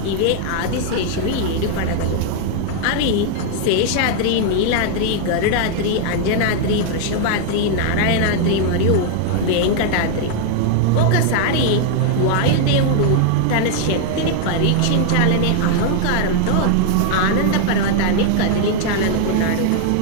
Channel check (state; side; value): different; both; correlation 0.00